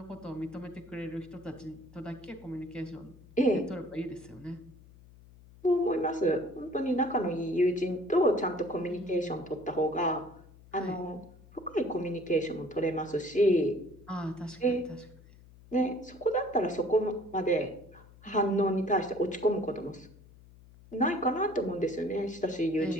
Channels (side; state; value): left; noise; hum, 22 dB below the sound